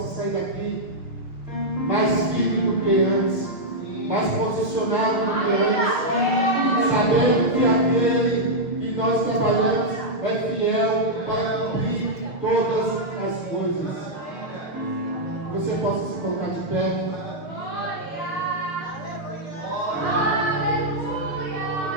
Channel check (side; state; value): right; late; 6.6 ms